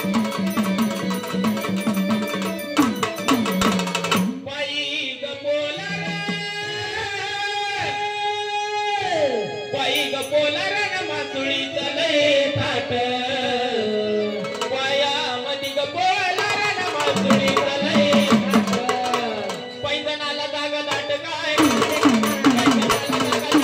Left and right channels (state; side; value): identical; both; correlation 1.00